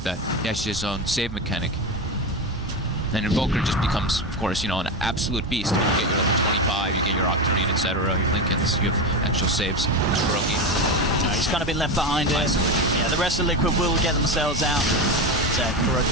He has his own save mechanic. And Invoker just becomes, of course, an absolute beast. When you get your level 25, you get your Octarine, etc., your Lincolns, you have actual saves. Kuroki. He's kind of been left behind here. Yeah, the rest of Liquid will get themselves out.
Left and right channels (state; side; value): normal; both; correlation 0.17